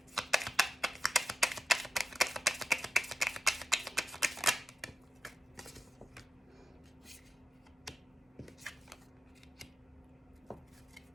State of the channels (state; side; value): normal; both; correlation 0.88